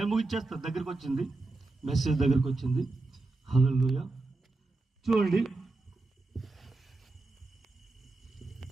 ముగిచ్చేస్తాను. దగ్గరికి వచ్చింది మెసేజ్, దగ్గరికి వచ్చింది. హల్లెలూయా. చూడండి,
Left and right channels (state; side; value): quieter; left; 3.3 dB